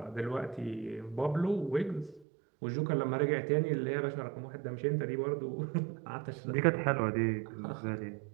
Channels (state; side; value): drops out; left; at 2.2 s